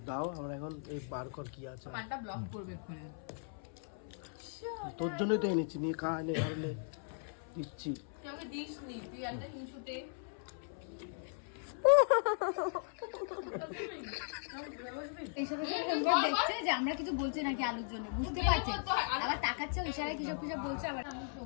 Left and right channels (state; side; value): silent; right; 53 dB below the other